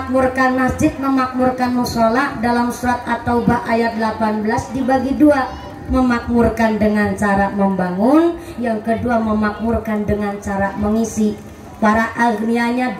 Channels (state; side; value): identical; both; correlation 1.00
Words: masjid, memakmurkan mushola dalam surat At-Taubah ayat 18 dibagi dua. Memakmurkan dengan cara membangun, yang kedua memakmurkan dengan cara mengisi. Para agnianya